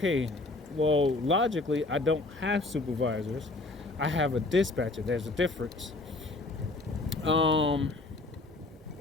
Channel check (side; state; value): right; quieter; 3.1 dB